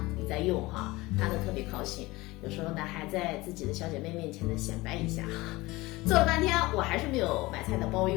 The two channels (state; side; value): quieter; right; 20.9 dB